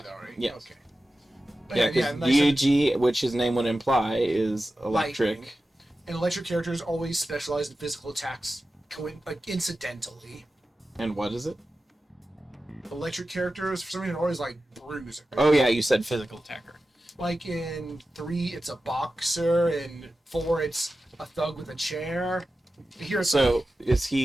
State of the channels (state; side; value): normal; both; correlation 0.93